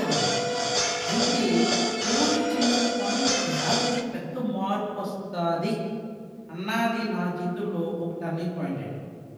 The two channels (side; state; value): both; identical; correlation 1.00